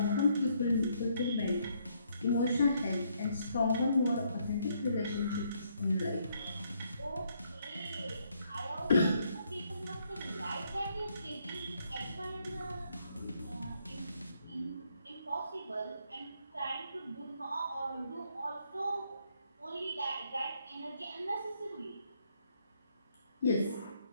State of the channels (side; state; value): both; inverted; correlation -0.72